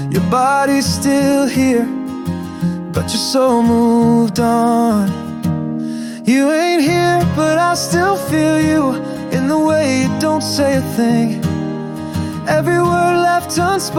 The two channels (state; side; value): identical; both; correlation 1.00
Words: Your body's still here, but your soul moved on. You ain't here, but I still feel you in the way you don't say a thing. Every word left